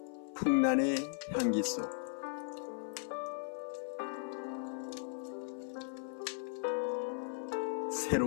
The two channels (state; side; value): silent; right; 53 dB below the other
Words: 풍란의 향기 속